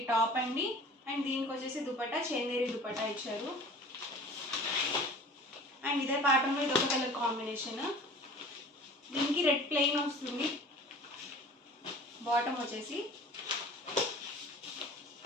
టాప్ అండి. అండ్ దీనికి వచ్చేసి దుపట్టా చందేరి దుపట్టా ఇచ్చారు. అండ్ ఇదే ప్యాటర్న్లో ఇది ఒక కలర్ కాంబినేషన్. దీనికి రెడ్ ప్లెయిన్ వస్తుంది. బాటమ్ వచ్చేసి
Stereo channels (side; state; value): both; normal; correlation 0.43